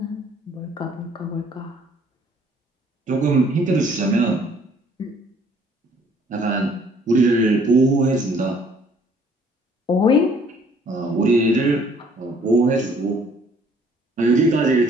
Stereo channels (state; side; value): normal; both; correlation 0.60